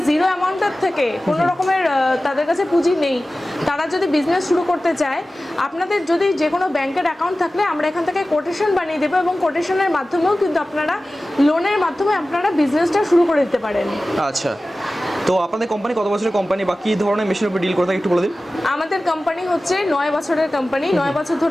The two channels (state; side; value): normal; both; correlation 0.96